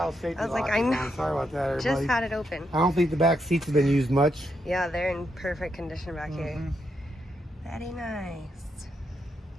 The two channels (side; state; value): both; normal; correlation 0.81